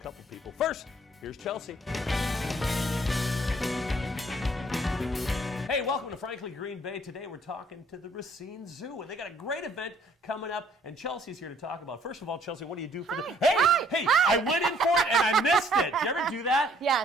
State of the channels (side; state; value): both; normal; correlation 0.62